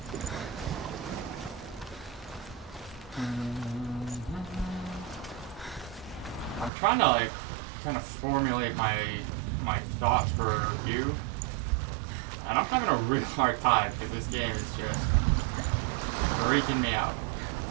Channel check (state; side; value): drops out; left; at 6.7 s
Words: I'm trying to like kind of formulate my thoughts for a review, and I'm having a real hard time because this game is just freaking me out.